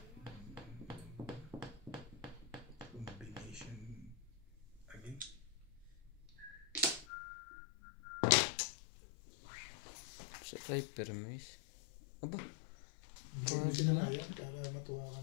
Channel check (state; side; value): drops out; right; at 7.1 s